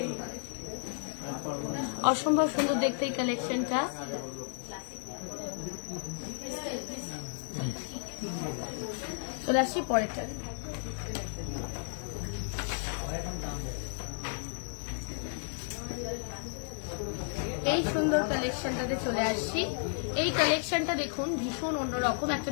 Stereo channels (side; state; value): right; silent; 56 dB below the other